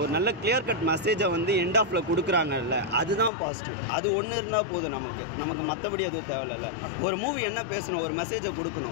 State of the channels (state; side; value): drops out; right; at 3.3 s